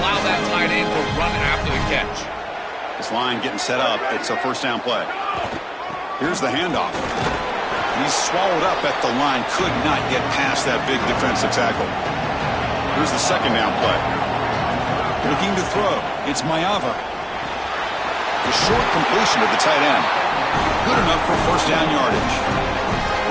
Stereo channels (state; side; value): identical; both; correlation 1.00